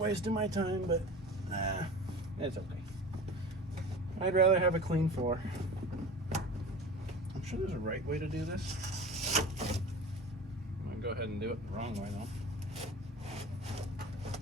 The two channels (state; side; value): normal; both; correlation 0.36